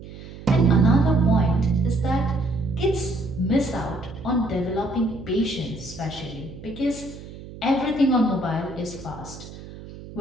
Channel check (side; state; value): right; noise; hum, 15 dB below the sound